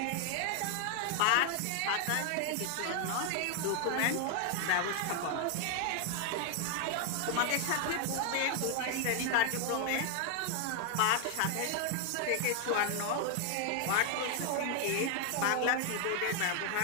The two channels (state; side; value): different; both; correlation 0.00